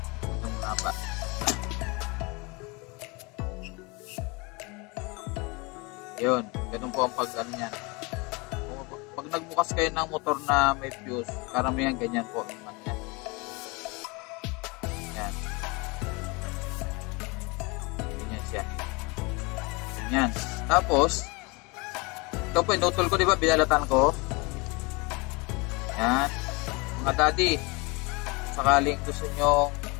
Ito muna pa. Yun. Ganun po ang pag-ano yan. Pag nagbukas kayo ng motor na may fuse, karamihan ganyan po naman yan. Yan. Ganyan siya. Ganyan. Tapos, ito po, inutol ko, diba? Binalatan ko. Yan. Mga daddy, sakaling gusto nyo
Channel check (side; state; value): right; quieter; 27.6 dB